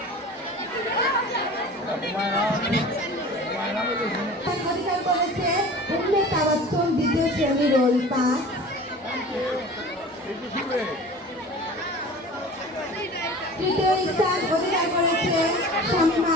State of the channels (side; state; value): both; normal; correlation 0.40